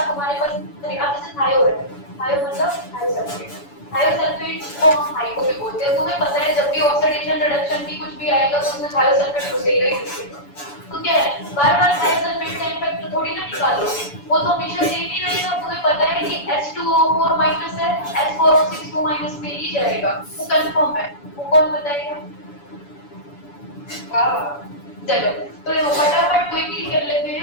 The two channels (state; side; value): late; right; 7.0 ms